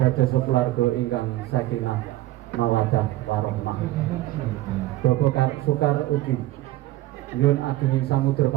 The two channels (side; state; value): left; quieter; 16.4 dB